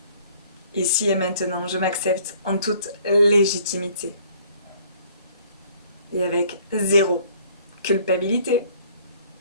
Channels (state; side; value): inverted; both; correlation -0.58